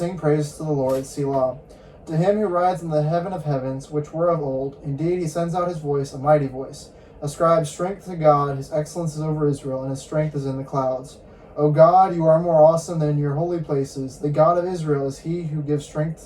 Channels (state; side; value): identical; both; correlation 1.00